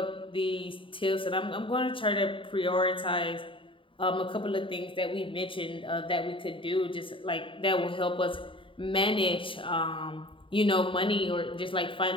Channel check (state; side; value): late; right; 0.25 ms